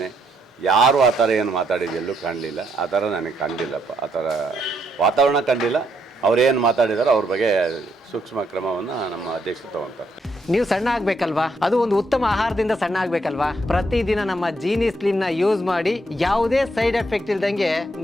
ಯಾರು ಆ ಥರ ಏನು ಮಾತಾಡಿದ್ದು ಎಲ್ಲೂ ಕಾಣಲಿಲ್ಲ. ಆ ಥರ ನನಗೆ ಕಂಡಿಲ್ಲಪ್ಪ. ಆ ಥರ ವಾತಾವರಣ ಕಂಡಿಲ್ಲ. ಅವ್ರೇನು ಮಾತಾಡಿದಾರೋ ಅವ್ರ ಬಗ್ಗೆ ಸೂಕ್ಷ್ಮ ಕ್ರಮವನ್ನು ನಮ್ಮ ಅಧ್ಯಕ್ಷರು ತಗೊಳ್ತಾರೆ. ನೀವು ಸಣ್ಣ ಆಗಬೇಕಲ್ವಾ? ಅದು ಒಂದು ಉತ್ತಮ ಆಹಾರದಿಂದ ಸಣ್ಣ ಆಗಬೇಕಲ್ವಾ? ಪ್ರತಿದಿನ ನಮ್ಮ ಜೀನಿ ಸ್ಲಿಮ್ನ ಯೂಸ್ ಮಾಡಿ ಯಾವುದೇ ಸೈಡ್ ಎಫೆಕ್ಟ್ ಇಲ್ದಂಗೆ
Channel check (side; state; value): both; normal; correlation 0.75